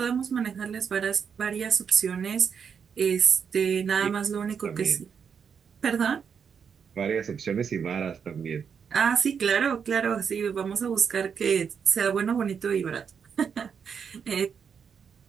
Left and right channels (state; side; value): quieter; left; 6.9 dB